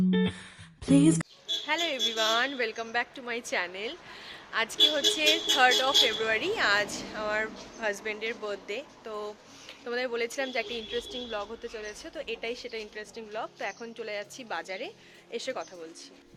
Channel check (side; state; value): both; identical; correlation 1.00